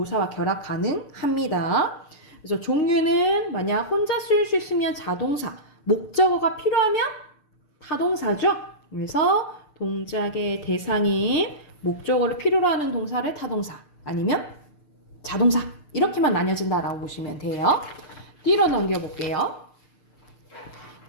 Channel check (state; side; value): late; right; 6.7 ms